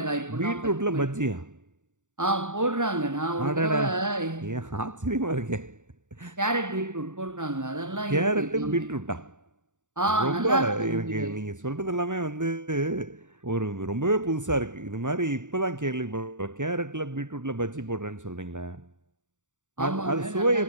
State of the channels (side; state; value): left; late; 0.86 ms